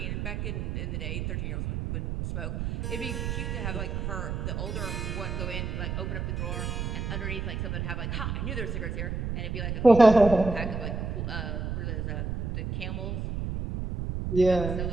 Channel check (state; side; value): noise; right; rumble, 3 dB below the sound